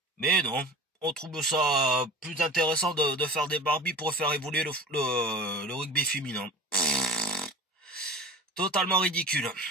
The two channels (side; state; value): both; normal; correlation 0.36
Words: Mais non, on trouve ça plus intéressant de faire des Barbies pour faire évoluer le rugby féminin. Totalement ridicule.